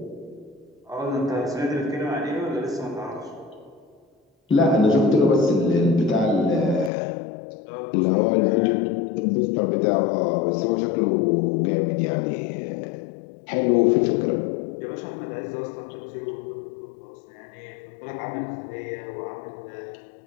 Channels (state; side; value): drops out; right; at 6.9 s